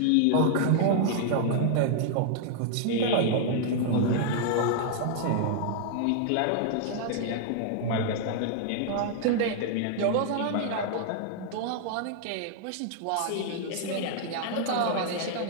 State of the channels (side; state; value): both; different; correlation -0.01